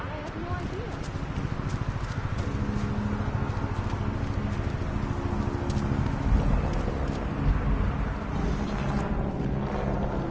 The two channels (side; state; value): both; identical; correlation 1.00